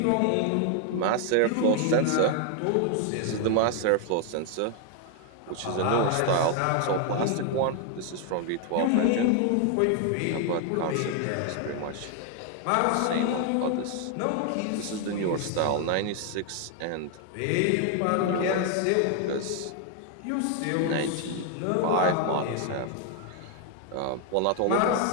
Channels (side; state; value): both; different; correlation 0.00